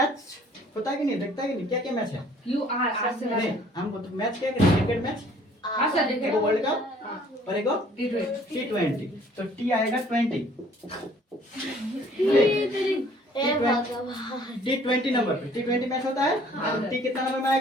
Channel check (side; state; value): both; normal; correlation 0.57